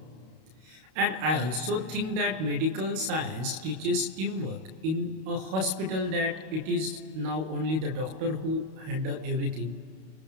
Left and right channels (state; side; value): late; left; 32 ms